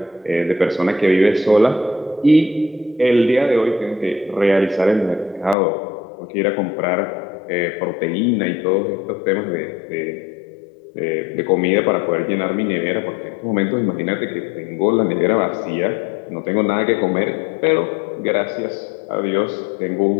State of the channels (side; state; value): right; drops out; at 5.6 s